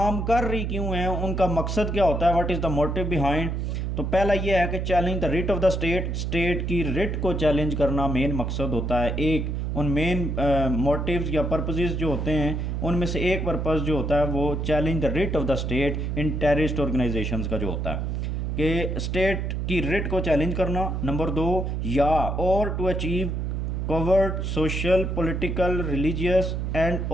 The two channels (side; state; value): right; noise; hum, 1 dB below the sound